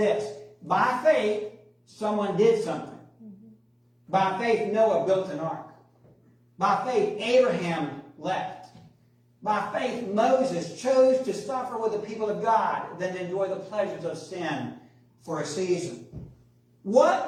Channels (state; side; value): identical; both; correlation 1.00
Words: by faith, someone did something. By faith, Noah built an ark. By faith, Abraham left. By faith, Moses chose to suffer with the people of God than enjoy the pleasures of sin for a season. What